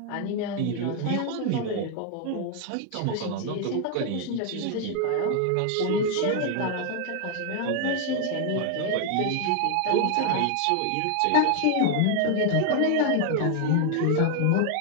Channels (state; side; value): different; both; correlation 0.01